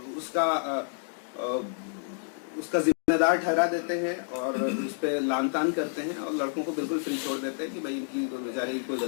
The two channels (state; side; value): silent; right; digital silence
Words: उसका जिम्मेदार ठहरा देते हैं और उस पर लान तान करते हैं और लड़कों को बिल्कुल फ्री छोड़ देते हैं कि भाई इनकी बेचारे की कोई